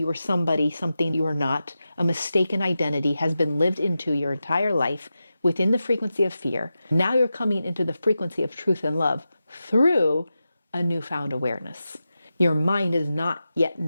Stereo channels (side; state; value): both; inverted; correlation -0.91